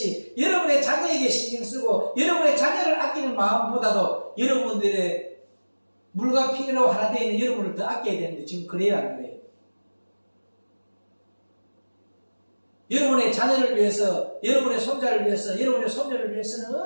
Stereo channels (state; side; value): inverted; both; correlation -1.00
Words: 여러분의 자녀에게 신경 쓰고 여러분의 자녀를 아끼는 마음보다도 여러분들의 물과 피로 하나 되어 있는 여러분을 더 아껴야 되는데 지금 그래요 안 그래요? 여러분의 자녀를 위해서, 여러분의 손자를 위해서, 여러분의 손녀를 위해서는